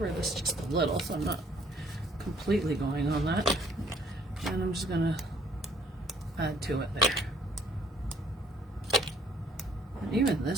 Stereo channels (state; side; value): normal; both; correlation 0.60